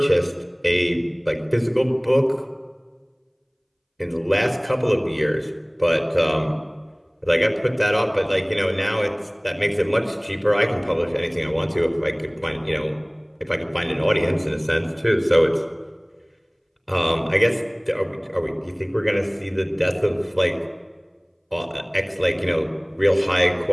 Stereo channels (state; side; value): identical; both; correlation 1.00